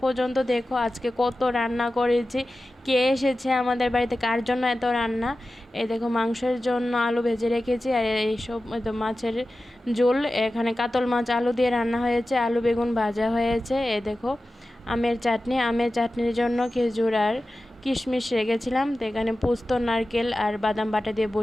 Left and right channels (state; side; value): normal; both; correlation 0.94